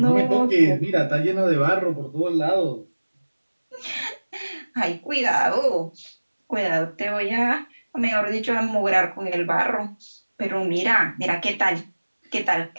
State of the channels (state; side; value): inverted; both; correlation -1.00